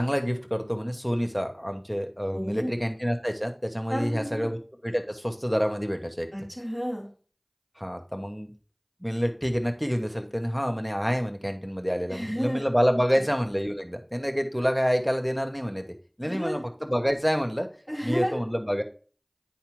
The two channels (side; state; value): both; identical; correlation 1.00